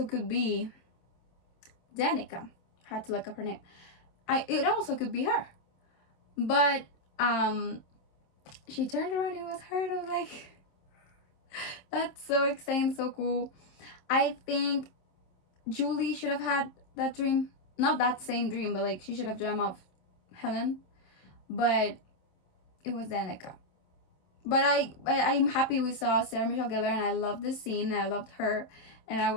could be Danica. Had to look up her name. It also could be her, but she turned around, it was her, and I was like, that's so exciting, so cool. I think Julie should have had that dream. Not that same dream, but like she should have dreamt of Helen. But it was Danica. But I'm happy we saw Sarah Michelle Gellar, and I loved this scene. I loved her, and I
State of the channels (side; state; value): right; late; 27 ms